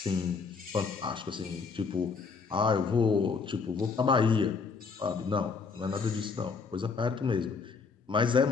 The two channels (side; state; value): right; quieter; 5.0 dB